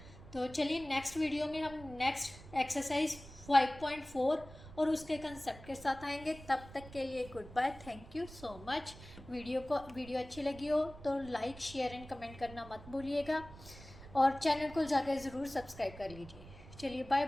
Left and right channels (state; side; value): noise; right; rumble, 17 dB below the sound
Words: तो चलिए नेक्स्ट वीडियो में हम नेक्स्ट एक्सरसाइज 5.4 और उसके कंसेप्ट के साथ आएंगे। तब तक के लिए good bye, thank you so much. Video अच्छी लगी हो तो लाइक शेयर एंड कमेंट करना मत भूलिएगा, और चैनल को जाकर ज़रूर सब्सक्राइब कर लीजिए। चलिए बाय